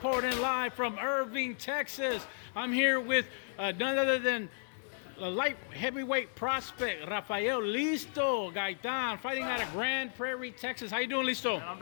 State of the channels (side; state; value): right; silent; 55 dB below the other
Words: live from Irving, Texas. I'm here with none other than the light heavyweight prospect, Rafael Listo Gaitan, fighting out of Grand Prairie, Texas. How you doing, Listo? Man, I'm